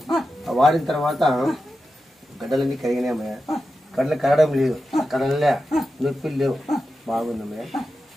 వాడిన తర్వాత గడ్డలన్నీ కరిగినాయమ్మయ్య. గడ్డలు కరగడం లేదు, కడలే నొప్పులు లేవు, బాగుందమ్మయ్య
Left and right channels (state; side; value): normal; both; correlation 0.91